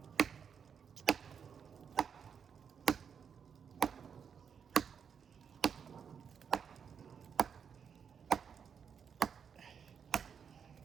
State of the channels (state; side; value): quieter; left; 7.1 dB